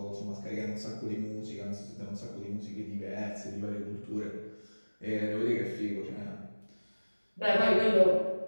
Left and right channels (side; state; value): both; inverted; correlation -1.00